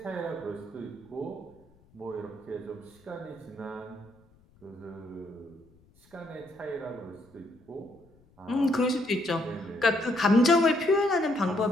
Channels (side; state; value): left; noise; rumble, 30 dB below the sound